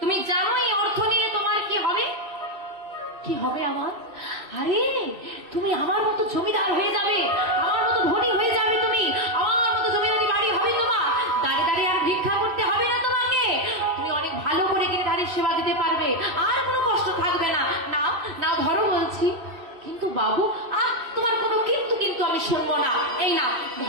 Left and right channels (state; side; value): late; left; 2.6 ms